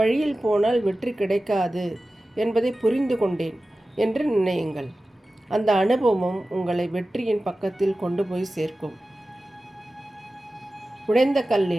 போனால் வெற்றி கிடைக்காது என்பதை புரிந்து கொண்டேன் என்று நினையுங்கள். அந்த அனுபவம் உங்களை வெற்றியின் பக்கத்தில் கொண்டு போய் சேர்க்கும். உடைந்த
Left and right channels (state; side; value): normal; both; correlation 0.95